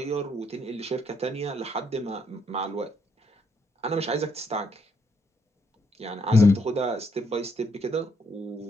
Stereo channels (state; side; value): normal; both; correlation 0.73